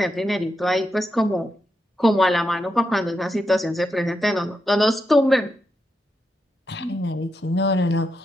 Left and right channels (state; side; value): normal; both; correlation 0.84